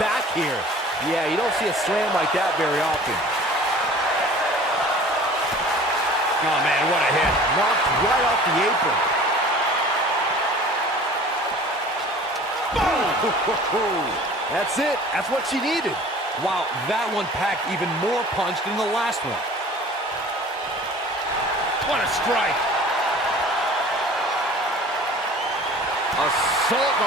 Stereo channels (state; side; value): normal; both; correlation 0.45